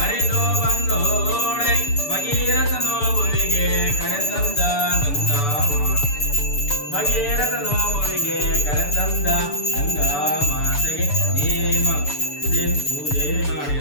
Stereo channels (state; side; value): late; right; 6.9 ms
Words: ಬಂದೋಳೆ ಭಗೀರಥ ನೋವುವಿಗೆ ಕರೆತಂದ ಗಂಗಾ ಭಗೀರಥ ನೋವುವಿಗೆ ಕರೆತಂದ ಗಂಗಾ ಮಾತೆಗೆ ನೇಮ ದಿನ ಪೂಜೆ